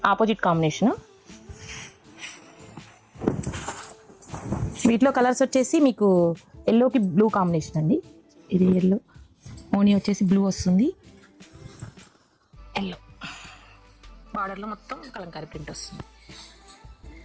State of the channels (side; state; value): both; identical; correlation 1.00